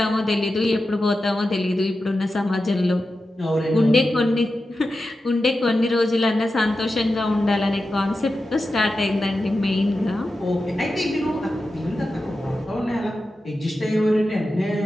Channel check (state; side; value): normal; both; correlation 0.92